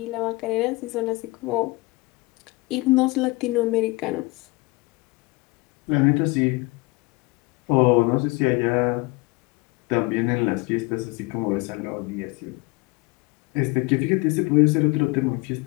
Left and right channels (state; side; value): quieter; right; 24.1 dB